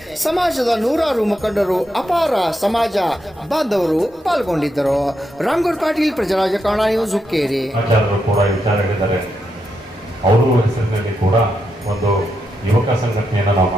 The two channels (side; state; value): both; normal; correlation 0.83